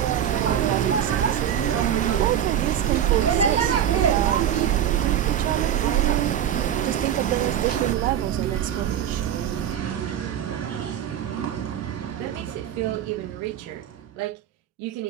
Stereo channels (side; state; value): left; quieter; 10.1 dB